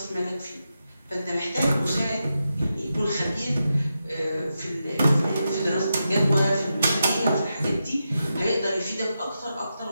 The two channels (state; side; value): inverted; both; correlation -0.88